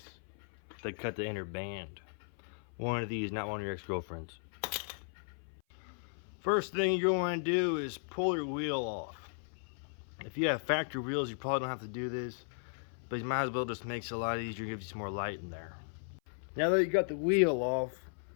to cut the inner band. One of these, not one of your ex-girlfriends. First thing you're going to do is pull your wheel off. If you have factory wheels, you probably don't have to do this, but you might as well just makes it a lot easier, gives you some more light in there. Now that you got the wheel off,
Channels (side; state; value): right; silent; 54 dB below the other